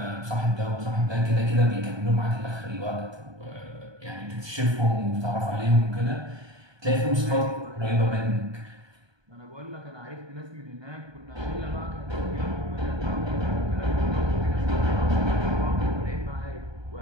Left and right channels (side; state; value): left; late; 1.2 ms